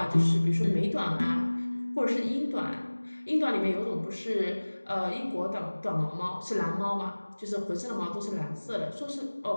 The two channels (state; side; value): inverted; both; correlation -1.00